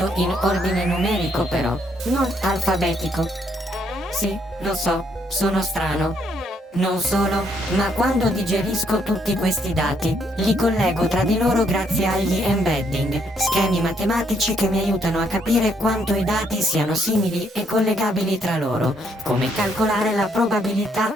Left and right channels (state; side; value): normal; both; correlation 0.71